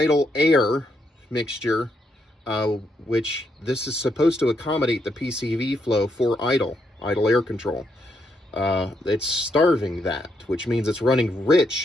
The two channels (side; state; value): both; normal; correlation 0.78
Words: air mixture, which this is supposed to accommodate the PCV flow for idle air control. It's starving that, which means it's running